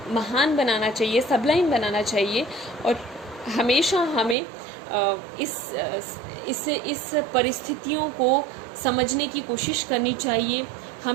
महान बनाना चाहिए, सबलाइन बनाना चाहिए, और हमेशा हमें इस परिस्थितियों को समझने की कोशिश करनी चाहिए.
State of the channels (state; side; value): drops out; left; at 4.4 s